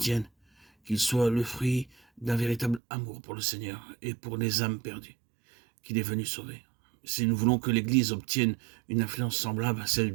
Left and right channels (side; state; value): left; drops out; at 2.8 s